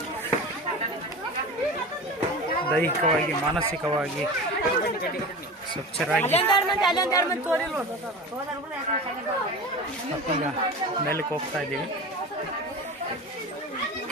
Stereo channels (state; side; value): normal; both; correlation 0.31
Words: ದೈಹಿಕವಾಗಿ ಮಾನಸಿಕವಾಗಿ ಸ್ವಚ್ಛರಾಗಿ ಮತ್ತೀಗ ಮೇಲಕ್ಕೆ ಹೋಗ್ತಾ ಇದ್ದೀವಿ.